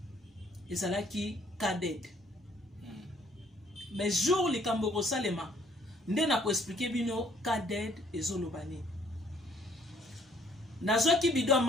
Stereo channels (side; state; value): both; normal; correlation 0.62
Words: ezalaki Kaded. Mais jour likambo kosalema nde na koexpliquer bino Kaded ezoloba nini. Nazwaki bido ya